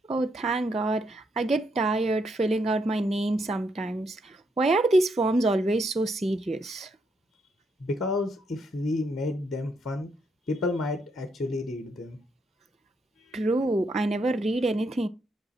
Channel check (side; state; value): both; normal; correlation 0.76